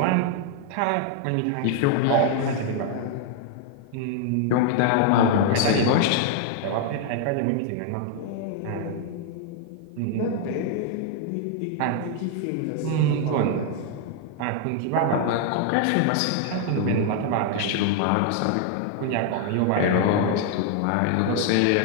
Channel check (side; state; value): both; different; correlation 0.00